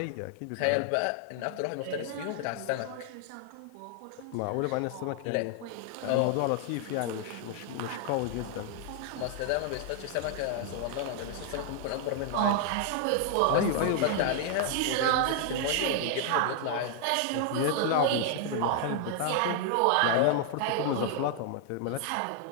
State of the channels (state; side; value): different; both; correlation 0.00